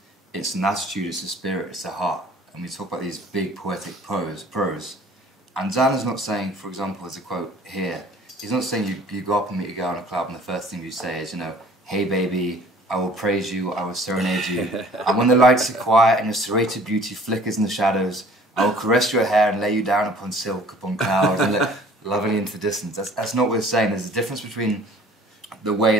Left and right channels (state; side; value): normal; both; correlation 0.51